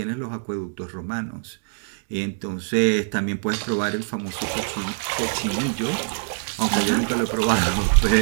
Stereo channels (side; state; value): left; silent; digital silence